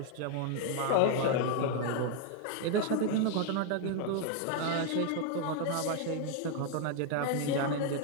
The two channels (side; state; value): both; different; correlation 0.01